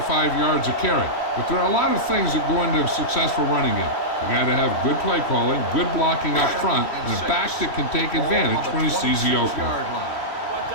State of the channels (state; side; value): late; right; 3.1 ms